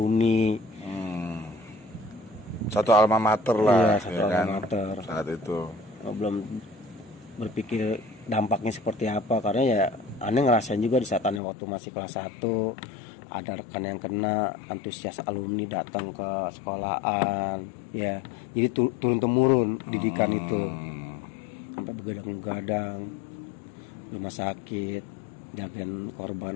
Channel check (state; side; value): drops out; right; at 11.4 s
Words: Satu alma mater lah, alma mater. Saat itu belum berpikir dampaknya seperti apa karena ya aneh ngerasain juga di saat aneh waktu masih kelas 1 ada rekan yang kena, antusias alumni datang ke sekolahan, ya. Jadi turun temurun didikan itu sampai begadang-begadang rumah sakit, jagain